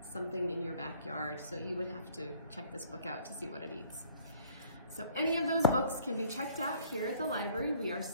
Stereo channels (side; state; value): both; inverted; correlation -0.57